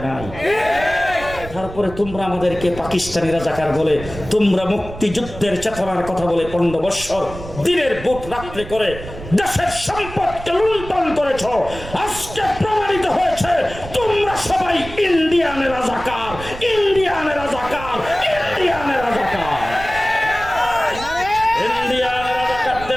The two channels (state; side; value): noise; right; rumble, 13 dB below the sound